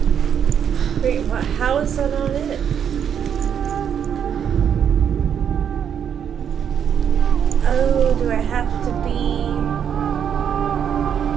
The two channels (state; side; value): quieter; left; 8.3 dB